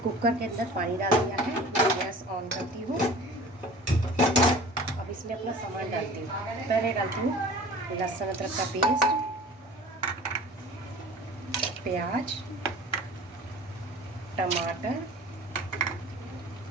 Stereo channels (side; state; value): both; normal; correlation 0.42